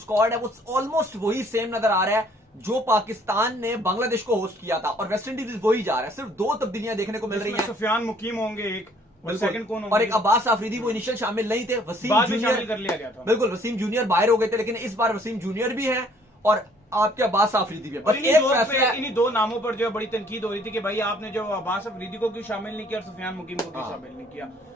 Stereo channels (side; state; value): both; normal; correlation 0.60